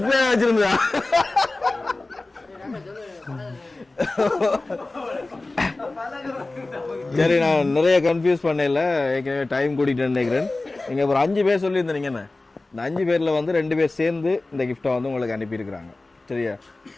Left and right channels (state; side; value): quieter; right; 3.1 dB